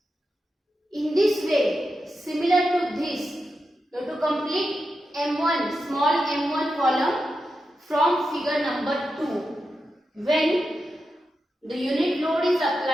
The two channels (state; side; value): normal; both; correlation 0.88